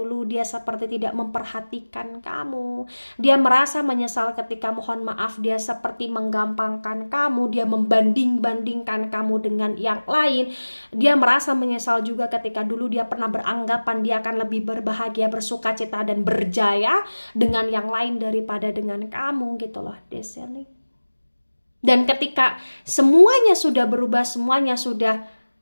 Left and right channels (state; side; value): inverted; both; correlation -1.00